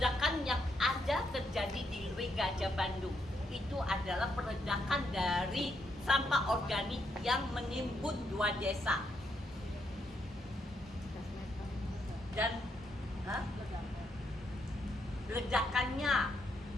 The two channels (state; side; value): normal; both; correlation 0.78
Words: yang ada terjadi di Leweng Gajah Bandung itu adalah peledakan dari sampah organik yang menimbun 2 desa. Dan ledakannya